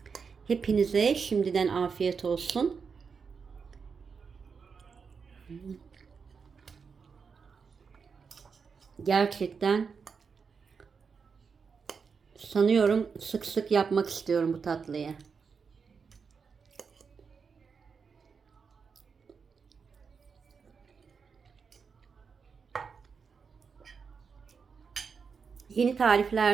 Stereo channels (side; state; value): left; quieter; 5.7 dB